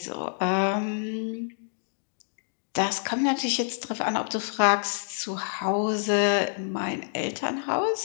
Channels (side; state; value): right; silent; digital silence